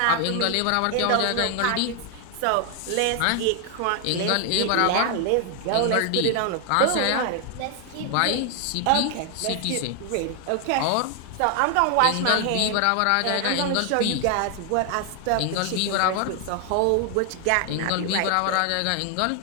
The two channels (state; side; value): different; both; correlation 0.00